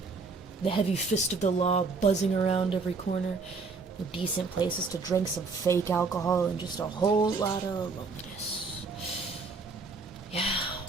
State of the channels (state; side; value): quieter; left; 4.3 dB